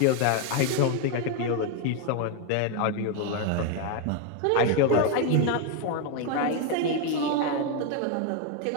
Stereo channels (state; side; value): different; both; correlation 0.01